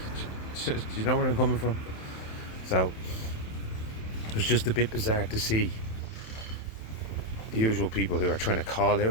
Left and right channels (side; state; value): right; late; 27 ms